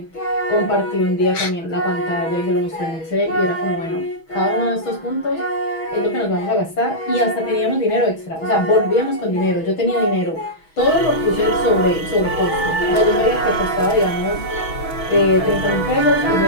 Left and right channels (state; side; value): late; right; 6.2 ms